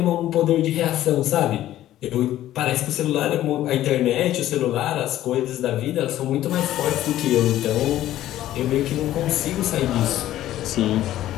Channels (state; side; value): quieter; right; 13.5 dB